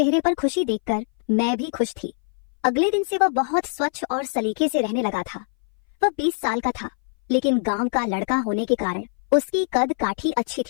पर खुशी देखकर मैं भी खुश थी। अगले दिन से वह बहुत स्वच्छ और सलीके से रहने लगा था। वह 20 साल का था, लेकिन गांव का लड़का होने के कारण उसकी कद काठी अच्छी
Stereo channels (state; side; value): silent; right; 60 dB below the other